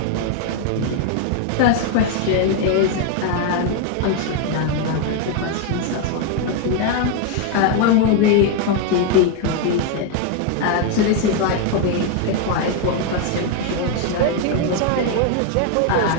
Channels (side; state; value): both; different; correlation 0.01